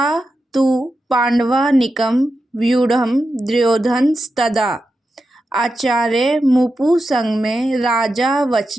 तु पांडवानीकं व्यूढ़ं दुर्योधनस्तदा आचार्य मुपुसंगमे राजा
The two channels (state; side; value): normal; both; correlation 0.89